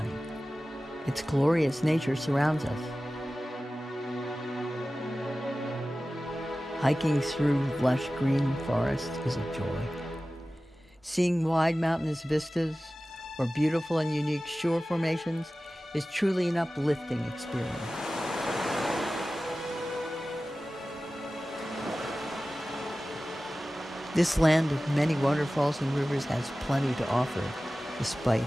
Its glorious nature surrounds us. Hiking through lush green forest is a joy. Seeing wide mountainous vistas or beautiful and unique shore formations is truly an uplifting experience. This land of many waterfalls and rivers has plenty to offer, despite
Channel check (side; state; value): both; normal; correlation 0.96